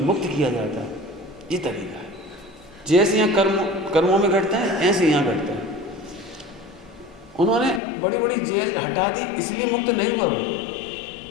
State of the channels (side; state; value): right; drops out; at 7.8 s